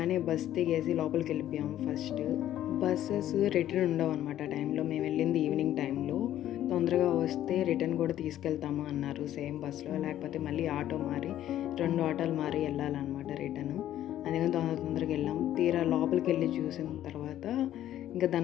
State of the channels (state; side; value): quieter; right; 12.3 dB